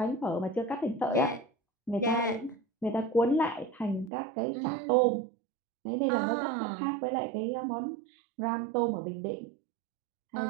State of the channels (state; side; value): drops out; left; at 4.1 s